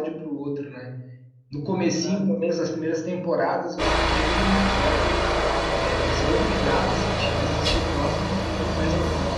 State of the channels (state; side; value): identical; both; correlation 1.00